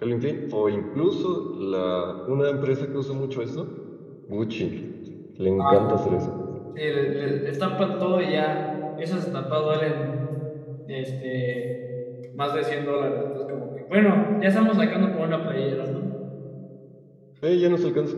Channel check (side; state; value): both; identical; correlation 1.00